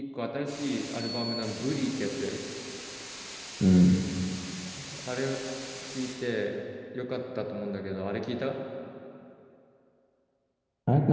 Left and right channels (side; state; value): both; identical; correlation 1.00